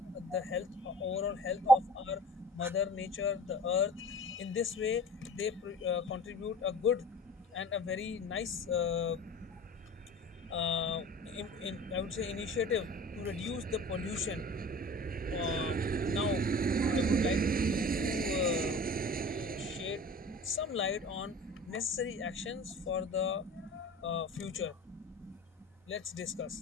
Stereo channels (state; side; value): normal; both; correlation 0.40